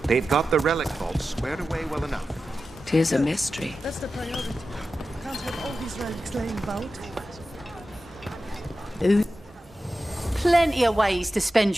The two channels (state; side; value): normal; both; correlation 0.93